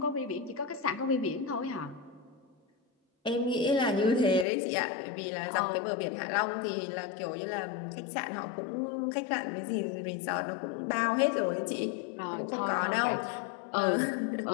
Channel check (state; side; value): drops out; right; at 4.5 s